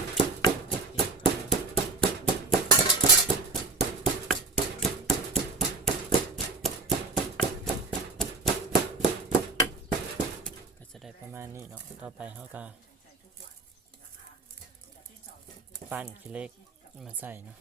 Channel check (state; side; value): quieter; left; 4.0 dB